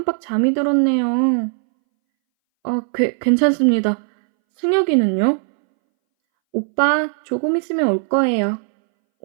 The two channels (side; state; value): left; silent; 64 dB below the other